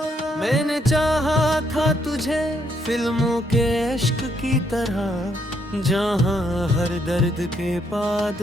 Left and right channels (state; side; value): normal; both; correlation 0.73